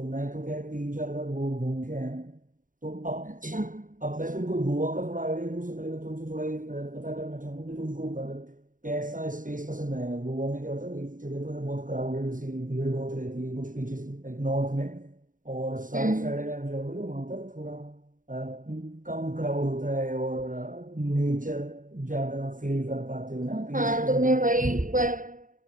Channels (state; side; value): late; left; 0.38 ms